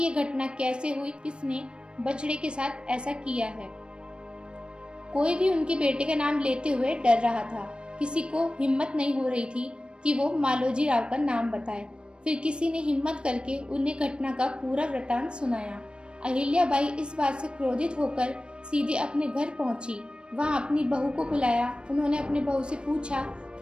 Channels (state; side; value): late; left; 0.055 ms